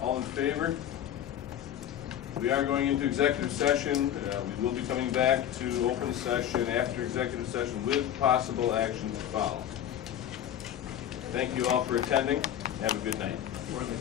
in favor? We are going into executive session. We will be coming back to open session after executive session with possible action to follow. Thank you all for attending. Have a good night. We're in the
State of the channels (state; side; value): quieter; right; 10.7 dB